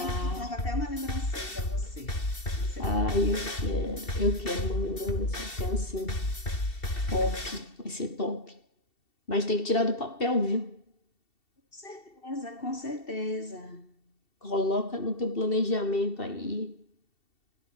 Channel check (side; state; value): right; late; 2.7 ms